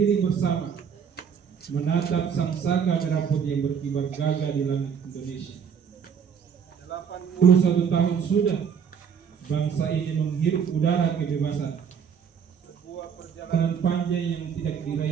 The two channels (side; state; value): left; quieter; 7.1 dB